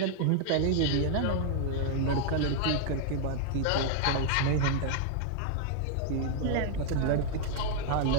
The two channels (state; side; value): different; both; correlation 0.00